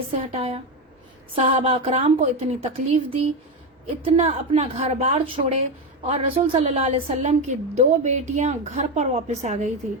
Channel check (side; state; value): both; normal; correlation 0.13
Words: سے ہٹایا، صحابہ اکرام کو اتنی تکلیف دی، اتنا اپنا گھر بار چھوڑے، اور رسول صلی اللہ علیہ وسلم کی 2 بیٹیاں گھر پر واپس آ گئی تھی،